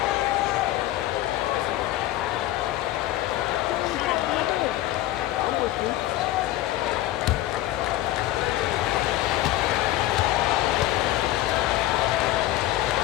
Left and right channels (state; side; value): quieter; right; 15.2 dB